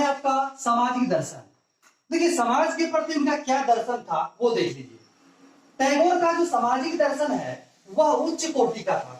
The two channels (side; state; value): both; identical; correlation 1.00